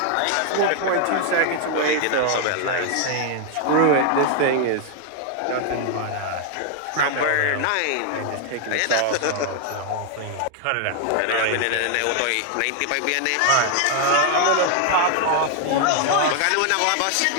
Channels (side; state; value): both; different; correlation 0.00